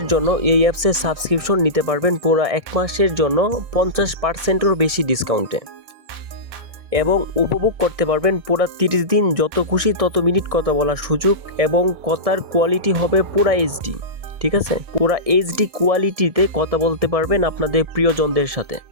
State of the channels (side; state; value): left; late; 1.9 ms